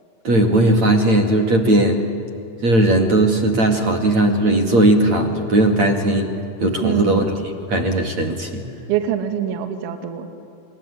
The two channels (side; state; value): left; late; 8.8 ms